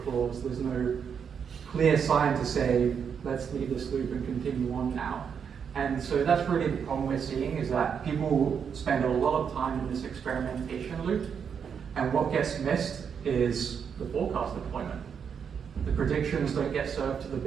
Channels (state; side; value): quieter; left; 7.1 dB